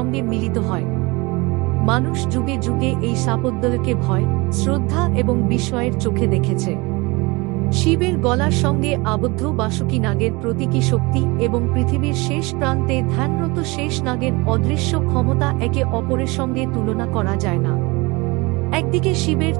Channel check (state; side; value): quieter; left; 24.9 dB